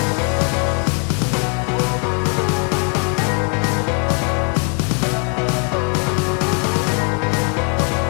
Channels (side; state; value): right; quieter; 37.9 dB